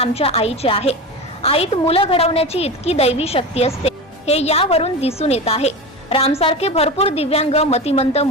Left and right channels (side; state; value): both; normal; correlation 0.25